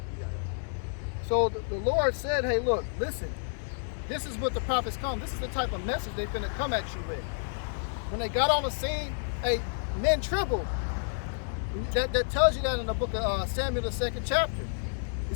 So the Lord said, hey, look, listen, this is what the prophets come. This is the type of message they finna come at you with. When they got on the scene, hey, men trembled. That tells you that in the book of Samuel, the 2nd chapter. It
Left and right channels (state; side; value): silent; right; digital silence